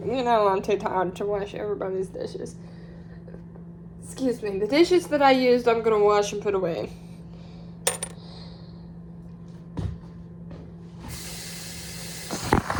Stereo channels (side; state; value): both; identical; correlation 1.00